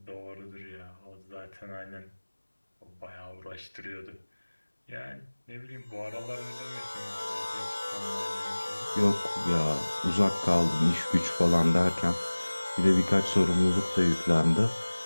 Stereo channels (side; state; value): both; inverted; correlation -1.00